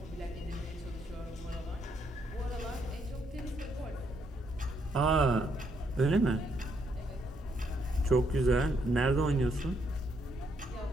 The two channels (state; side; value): normal; both; correlation 0.74